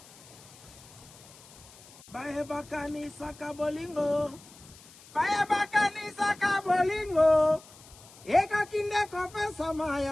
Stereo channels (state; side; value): noise; left; hiss, 22 dB below the sound